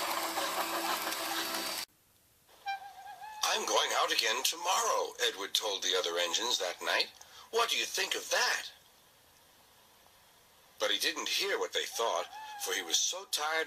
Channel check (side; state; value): both; identical; correlation 1.00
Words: "I'm going out again tomorrow," Edward told the other engines that night. "What do you think of that?" But he didn't hear what they thought, for he was so